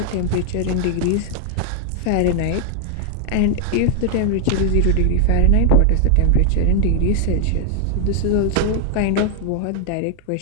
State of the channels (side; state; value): both; different; correlation 0.00